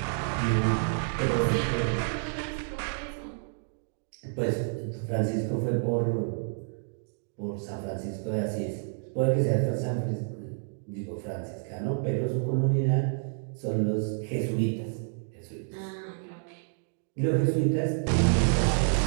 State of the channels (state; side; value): silent; left; digital silence